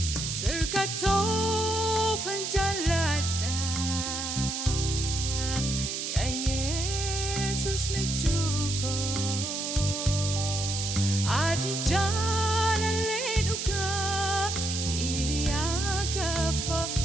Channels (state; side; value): noise; right; hiss, 3 dB below the sound